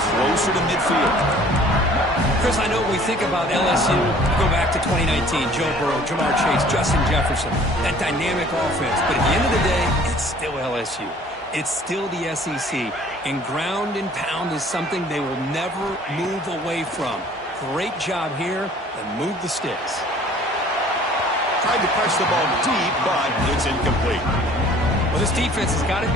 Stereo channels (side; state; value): both; normal; correlation 0.52